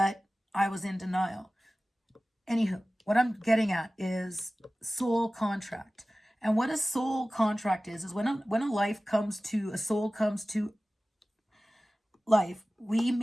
I was in denial. Anywho, what I'm getting at is soul contract. And what a soul contract is when a life comes to, a soul comes to life, we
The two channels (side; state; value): both; normal; correlation 0.96